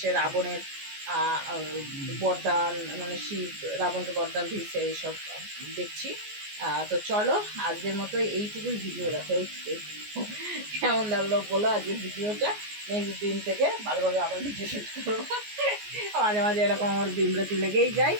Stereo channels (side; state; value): left; late; 14 ms